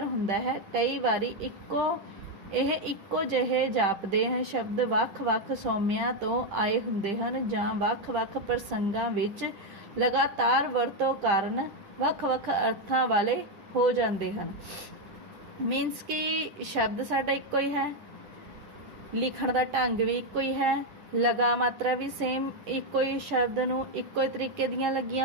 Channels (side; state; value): left; late; 10 ms